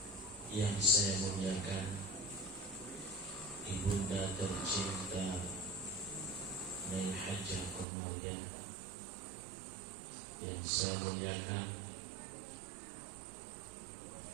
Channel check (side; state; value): left; drops out; at 7.9 s